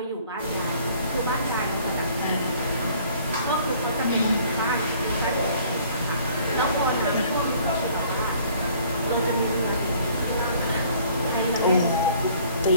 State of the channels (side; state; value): both; inverted; correlation -0.57